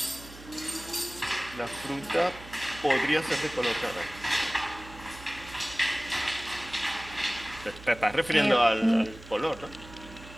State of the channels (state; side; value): noise; right; hum, 17 dB below the sound